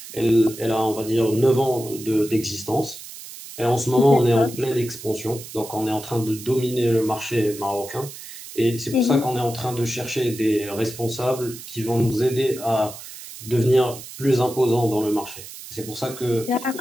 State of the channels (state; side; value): noise; right; hiss, 14 dB below the sound